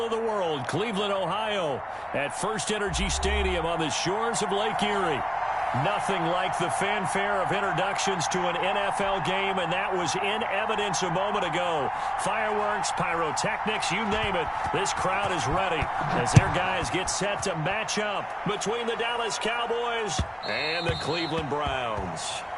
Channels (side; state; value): both; identical; correlation 1.00